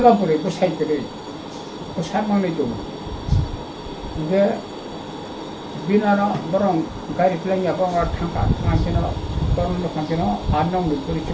버리고 사이들이 그 사망을 좀 이제 비나라 뭐랑 가리 플랜이 아빠가 탕가 탕기나 그런 거 탕기나 안녕 물들이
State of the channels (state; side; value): identical; both; correlation 1.00